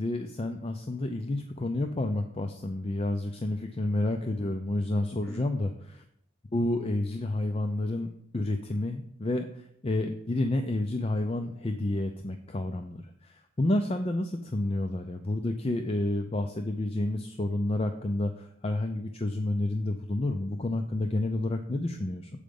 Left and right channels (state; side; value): normal; both; correlation 0.86